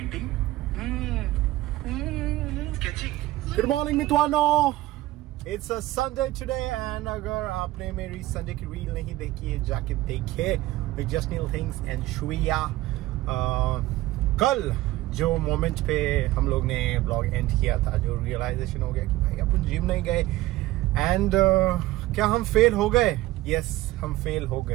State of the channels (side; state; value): left; quieter; 17.1 dB